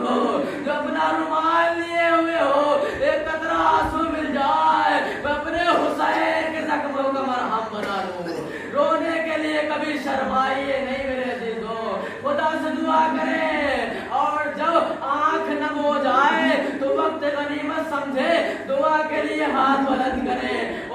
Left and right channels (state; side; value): identical; both; correlation 1.00